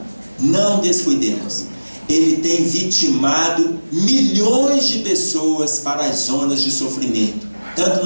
Não descuidemos. Ele tem vitimado milhões de pessoas para as zonas de sofrimento,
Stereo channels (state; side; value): inverted; both; correlation -1.00